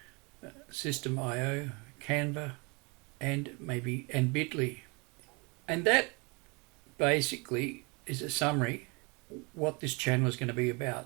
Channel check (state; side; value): quieter; left; 29.6 dB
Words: System.io, Canva, and Bitly. And that basically is a summary what this channel is going to be